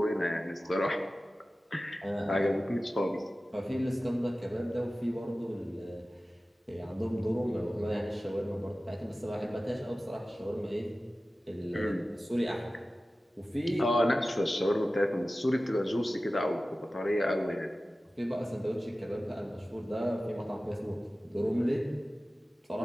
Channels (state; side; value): normal; both; correlation 0.96